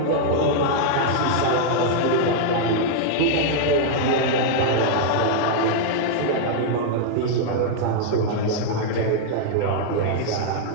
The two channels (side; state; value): both; different; correlation -0.01